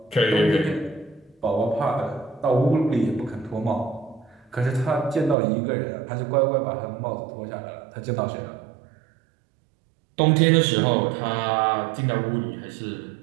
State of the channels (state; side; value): drops out; left; at 5.4 s